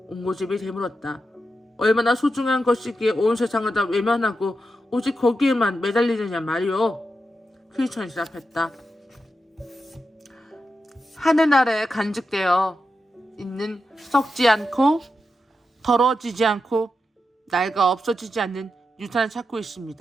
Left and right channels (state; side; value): normal; both; correlation 0.88